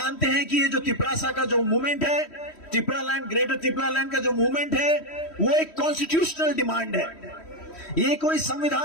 हैं कि ये जो तिपरासा का जो मूवमेंट है, तिपरालैंड, ग्रेटर तिपरालैंड का जो मूवमेंट है, वो एक कॉन्स्टिट्यूशनल डिमांड है, ये कोई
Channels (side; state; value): right; late; 3.1 ms